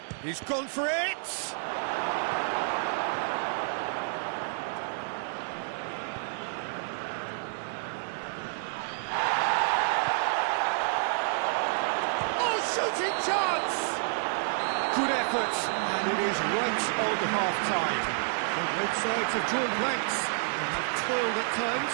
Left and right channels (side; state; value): left; silent; 58 dB below the other